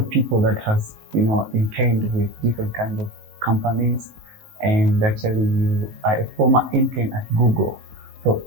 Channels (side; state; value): left; late; 19 ms